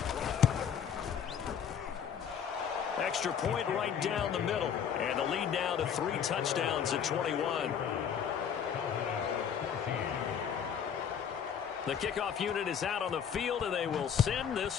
Extra point right down the middle. And the lead now to 3 touchdowns at 21. The kickoff unit is out on the field, and they will send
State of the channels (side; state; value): right; quieter; 7.9 dB